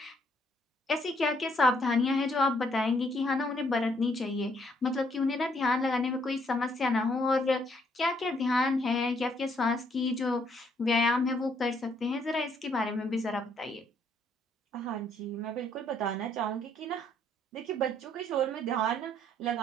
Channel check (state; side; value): normal; both; correlation 0.69